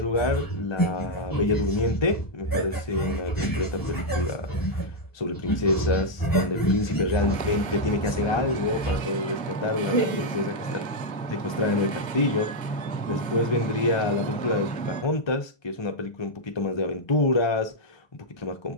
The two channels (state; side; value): late; right; 1.2 ms